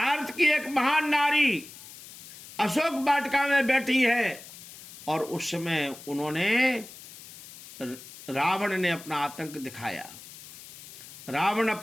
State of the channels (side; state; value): left; noise; hiss, 17 dB below the sound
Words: की एक महान नारी अशोक वाटिका में बैठी है और उस समय उन्होंने, रावण ने अपना आतंक दिखाया। रावण